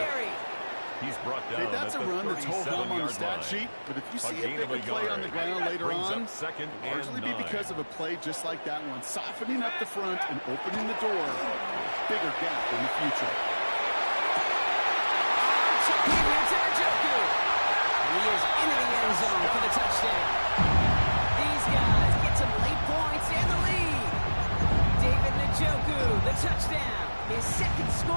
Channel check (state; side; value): inverted; both; correlation -1.00